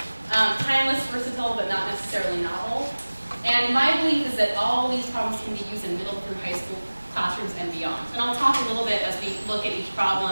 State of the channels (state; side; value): inverted; both; correlation -1.00